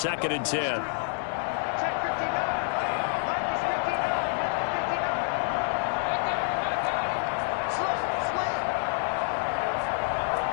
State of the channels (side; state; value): right; silent; 59 dB below the other